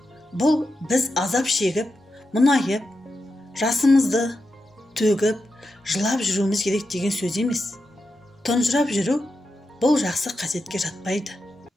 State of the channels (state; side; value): normal; both; correlation 0.88